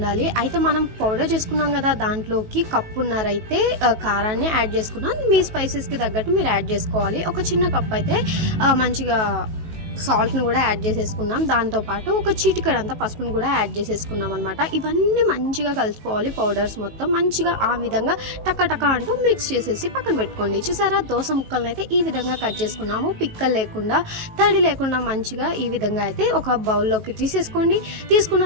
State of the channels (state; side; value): late; left; 19 ms